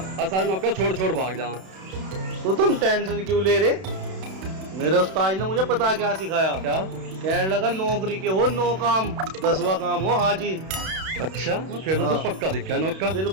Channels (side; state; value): left; late; 32 ms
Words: सारे नौकर छोड़ छोड़ भाग जा। तो तुम टेंशन क्यों ले रहे? मेरे उस्ताद ने मुझे पता क्या सिखाया। क्या? कहने लगा नौकरी के हो नो काम, 10वां काम हो हाजी। अच्छा फिर तो हाँ। तू पक्का दिखा है नौकर।